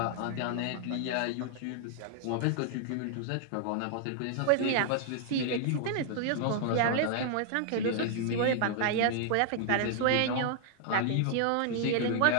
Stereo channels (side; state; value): both; different; correlation 0.00